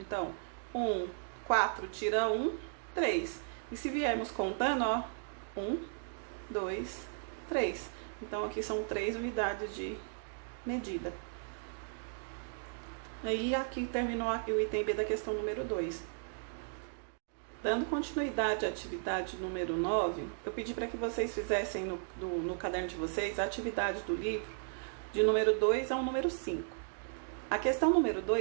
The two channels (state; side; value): silent; left; digital silence